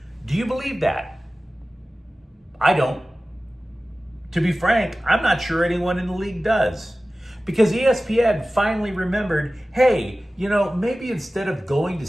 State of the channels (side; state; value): both; normal; correlation 0.96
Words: Do you believe that? I don't. To be frank, I'm not sure anyone in the league does. Because ESPN finally remembered, hey, maybe instead of going to